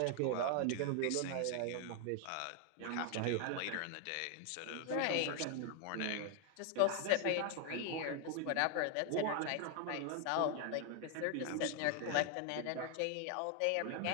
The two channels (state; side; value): different; both; correlation 0.00